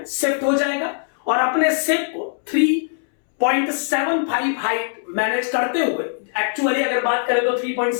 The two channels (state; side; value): silent; right; 65 dB below the other